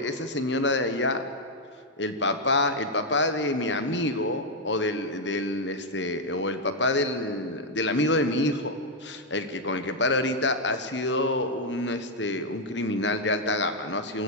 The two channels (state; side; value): normal; both; correlation 0.00